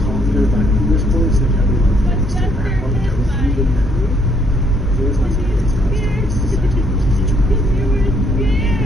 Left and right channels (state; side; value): normal; both; correlation 0.69